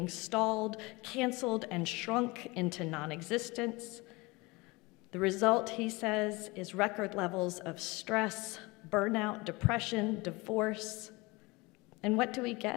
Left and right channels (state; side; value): quieter; right; 24.0 dB